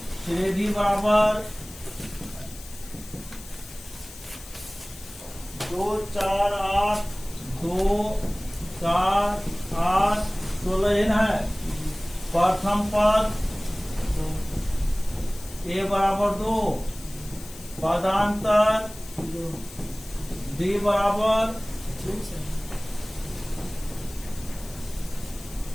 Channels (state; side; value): noise; left; hiss, 17 dB below the sound